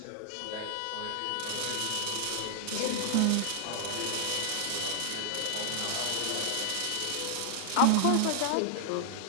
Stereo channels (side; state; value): both; different; correlation 0.00